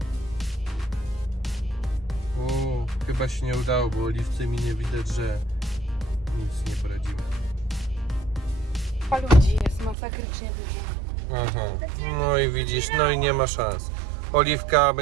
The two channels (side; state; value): left; drops out; at 10.0 s